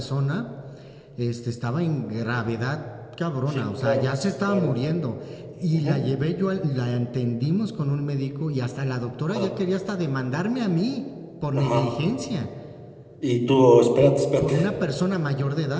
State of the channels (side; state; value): both; identical; correlation 1.00